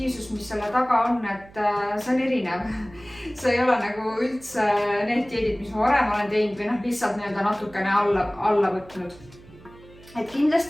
mis selle taga on, et see on erinev. See ei ole nagu üldse need dieedid, mis ma varem olen teinud või lihtsalt natukene alla võtnud. Et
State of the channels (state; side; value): noise; right; hum, 22 dB below the sound